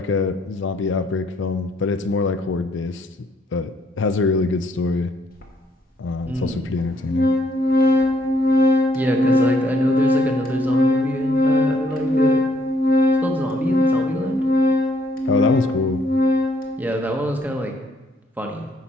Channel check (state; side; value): normal; both; correlation 0.68